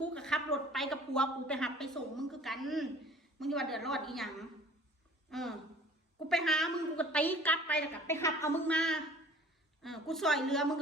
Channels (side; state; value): both; normal; correlation 0.50